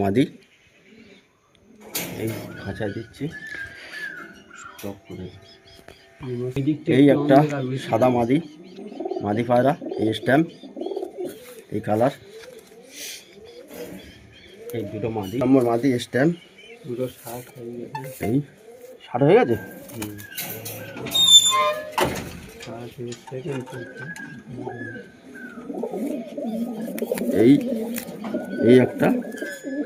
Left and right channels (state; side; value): identical; both; correlation 1.00